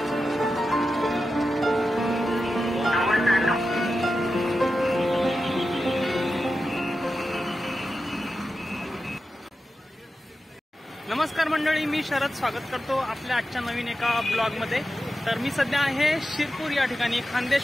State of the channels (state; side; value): normal; both; correlation 0.91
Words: नमस्कार मंडळी, मी शरद स्वागत करतो आपल्या आजच्या नवीन एका ब्लॉग मध्ये। तर मी सध्या आहे शिरपूर या ठिकाणी।